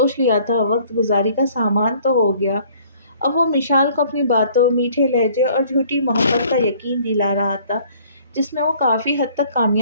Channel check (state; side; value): inverted; both; correlation -0.56